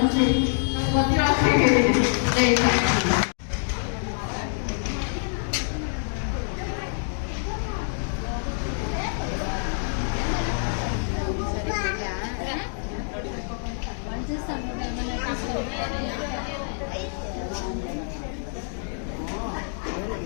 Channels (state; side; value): silent; right; 61 dB below the other